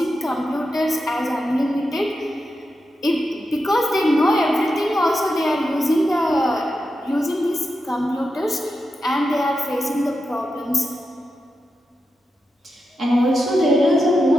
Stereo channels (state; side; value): normal; both; correlation 0.88